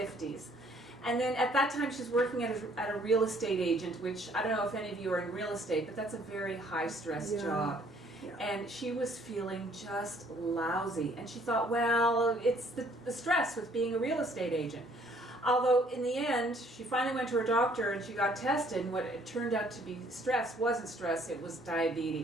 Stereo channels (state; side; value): normal; both; correlation 0.62